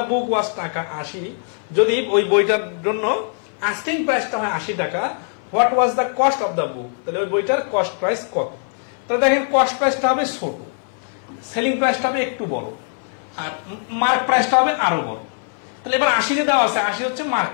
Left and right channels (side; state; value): right; silent; 60 dB below the other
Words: book was টাকা 80, যদি ওই বইটার জন্য আস্কিং প্রাইসটা হয় 80 টাকা, what was the cost of the book, তাহলে ওই বইটার কস্ট প্রাইস কত? তাহলে দেখেন কস্ট প্রাইসটা হবে ছোট, সেলিং প্রাইসটা হবে একটু বড়, আর মার্ক প্রাইসটা হবে আরো বড়। তাহলে এবার 80 দেওয়া আছে, 80 হচ্ছে মার্ক